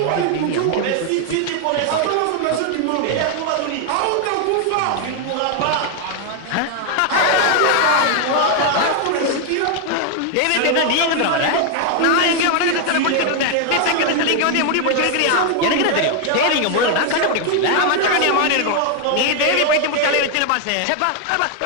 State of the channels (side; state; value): both; different; correlation 0.00